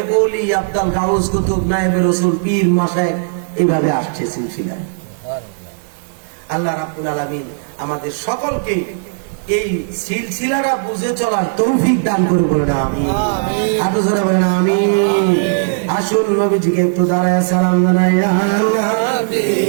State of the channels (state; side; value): silent; left; digital silence